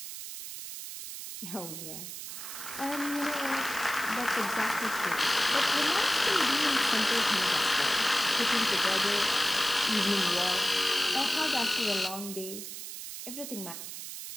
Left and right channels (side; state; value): right; noise; hiss, 9 dB below the sound